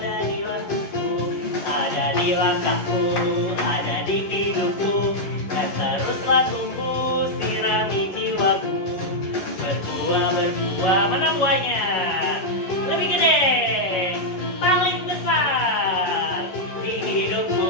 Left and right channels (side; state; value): right; late; 11 ms